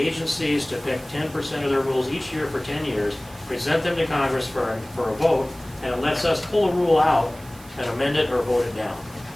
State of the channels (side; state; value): right; noise; hiss, 22 dB below the sound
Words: to pick 10% of their rules each year for 10 years, present them to Congress for a vote, and it lets us pull a rule out and amend it or vote it down.